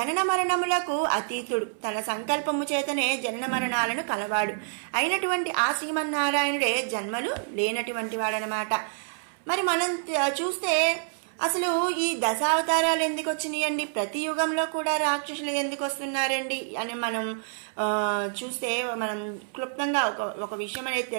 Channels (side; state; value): left; silent; 60 dB below the other